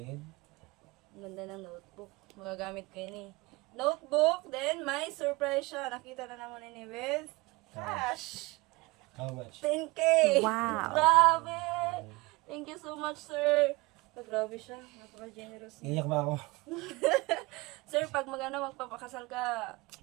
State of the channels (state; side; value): quieter; left; 23.5 dB